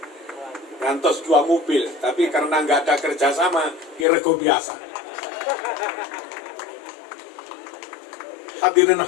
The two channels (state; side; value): drops out; right; at 4.0 s